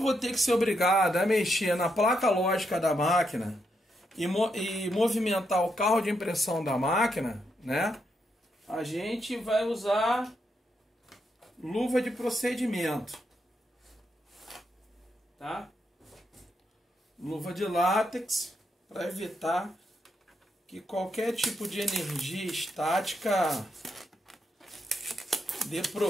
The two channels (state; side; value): normal; both; correlation 0.81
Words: ter que ser obrigado a mexer na placa lógica da máquina e movimentar o carro de impressão da máquina, né? A gente vai usar luva de procedimento, tá? Luva de látex para evitar que qualquer tipo de energia estática dê